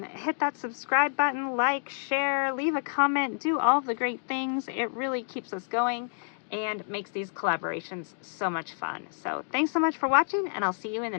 hit that subscribe button, like, share, leave a comment, do all of the great things. It really keeps us going and makes these collaborations so much fun. So thanks so much for watching, and I'll see you in the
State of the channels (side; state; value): right; silent; digital silence